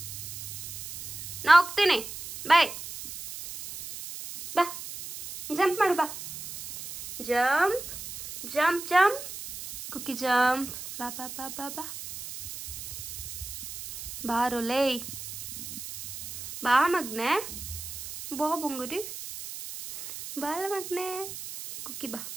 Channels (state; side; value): noise; right; hiss, 10 dB below the sound